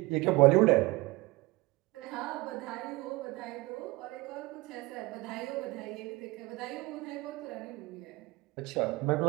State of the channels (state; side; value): quieter; left; 21.9 dB